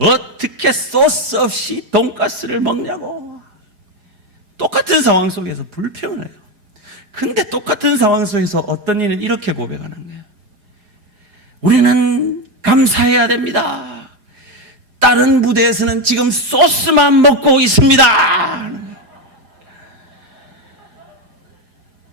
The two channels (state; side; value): late; left; 4.9 ms